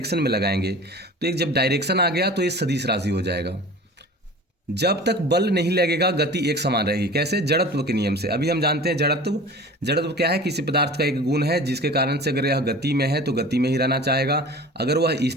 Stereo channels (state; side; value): normal; both; correlation 0.39